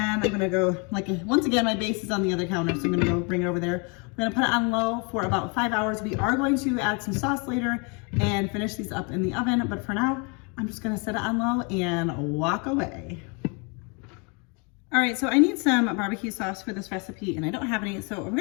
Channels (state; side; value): quieter; right; 33.2 dB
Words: I'm gonna go, like, once again, my base is on the other counter, so I'm gonna go bring it over there. We're gonna put it on low for about 5 hours. We are going to add some sauce later and finish these up in the oven, but for now, I'm just gonna set it on low and walk away. All right, so I need some barbecue sauce for this recipe, and I don't have any, so I'm